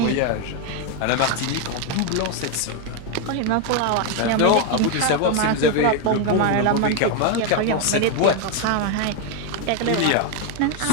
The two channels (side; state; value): both; different; correlation 0.01